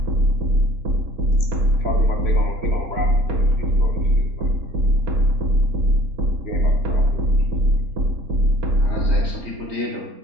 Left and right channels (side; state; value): left; late; 3.1 ms